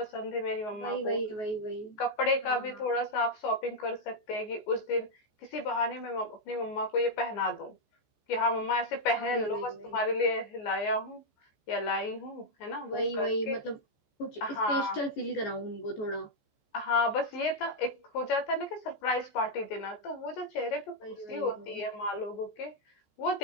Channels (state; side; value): late; right; 14 ms